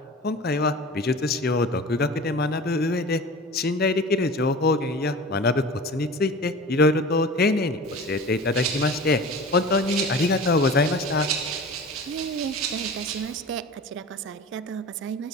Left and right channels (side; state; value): both; normal; correlation 0.37